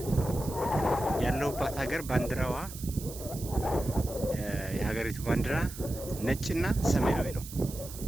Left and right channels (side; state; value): right; noise; hiss, 13 dB below the sound